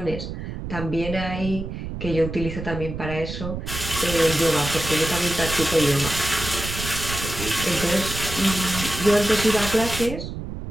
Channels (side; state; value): right; noise; rumble, 7 dB below the sound